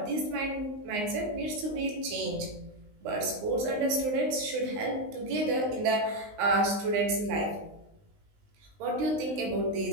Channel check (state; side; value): late; left; 19 ms